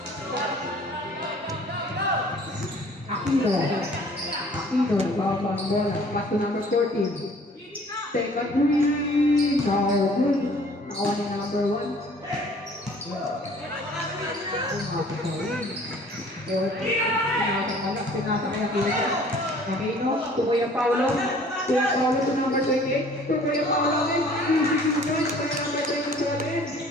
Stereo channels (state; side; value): normal; both; correlation 0.53